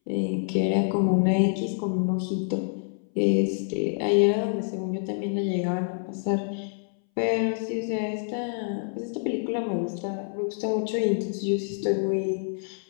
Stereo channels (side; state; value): right; silent; 60 dB below the other